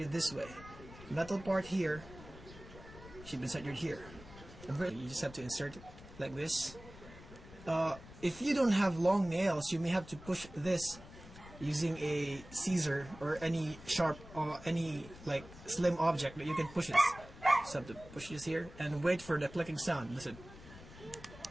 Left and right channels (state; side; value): noise; left; rumble, 17 dB below the sound